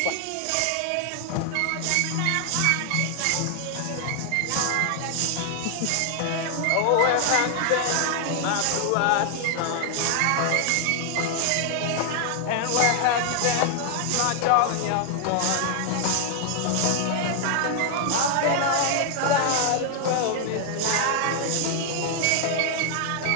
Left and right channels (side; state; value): both; different; correlation 0.00